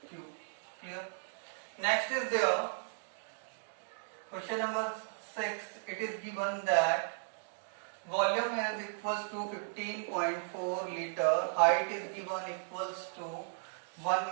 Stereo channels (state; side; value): silent; left; digital silence